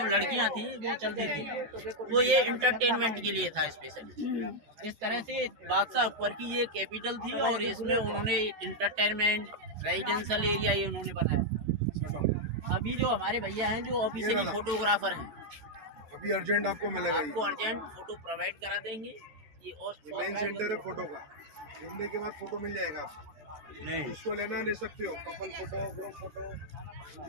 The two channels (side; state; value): left; late; 13 ms